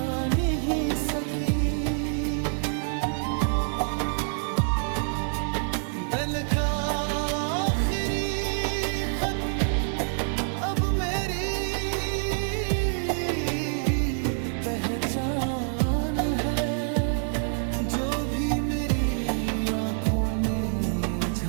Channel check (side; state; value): left; silent; digital silence